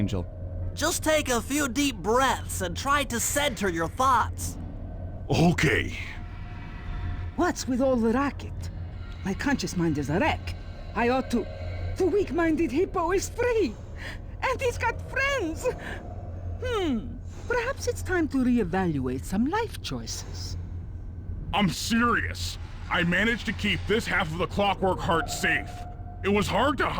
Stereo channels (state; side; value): identical; both; correlation 1.00